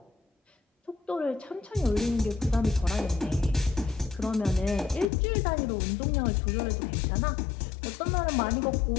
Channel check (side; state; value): right; drops out; at 5.1 s